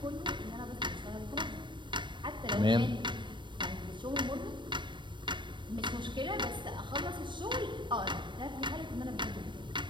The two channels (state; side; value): late; left; 0.23 ms